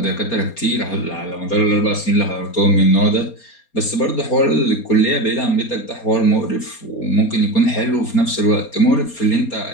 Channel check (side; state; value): right; late; 4.3 ms